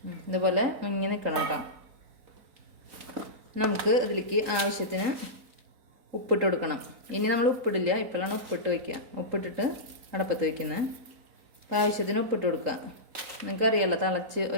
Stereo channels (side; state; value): left; late; 4.2 ms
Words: ഇതുപോലെ മുങ്ങി നിൽക്കണം കേട്ടോ. നമുക്ക് ഇതിലേക്ക് ആവശ്യത്തിന് ഉപ്പിട്ട് കൊടുക്കണം. ഇനി നമ്മൾ ഉപ്പിടില്ല, ഇപ്പോഴാണ് ഉപ്പിട്ട് വയ്ക്കുക. ഉപ്പിട്ടിട്ട് അടപ്പത്ത് വയ്ക്കുന്നത്. അപ്പോൾ ആവശ്യത്തിന് ഉപ്പിട്ട് കൊടുക്കുക. നിങ്ങൾക്കറിയാമല്ലോ, തിളച്ച്